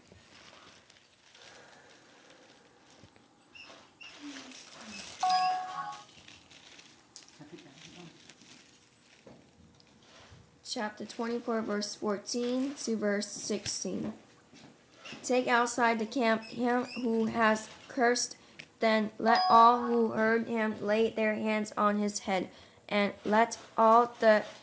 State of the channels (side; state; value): both; identical; correlation 1.00